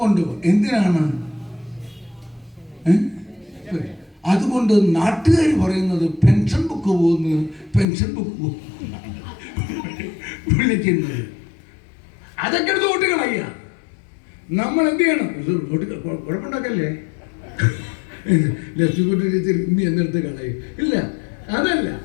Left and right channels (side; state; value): right; drops out; at 7.9 s